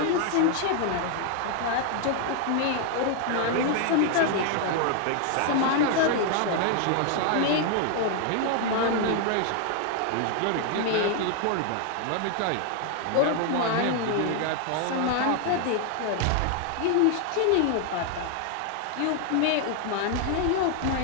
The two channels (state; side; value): different; both; correlation 0.00